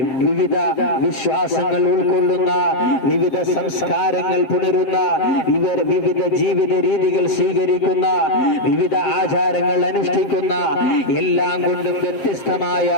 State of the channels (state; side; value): late; right; 7.4 ms